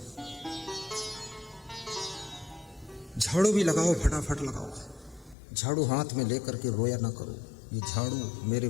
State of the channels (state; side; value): drops out; right; at 5.4 s